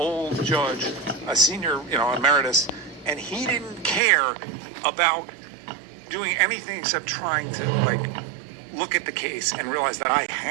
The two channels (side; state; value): left; drops out; at 4.0 s